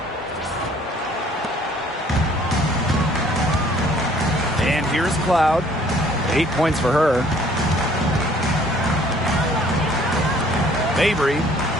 And here's Cloud. 8 points for her. Mabry.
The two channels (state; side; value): normal; both; correlation 0.57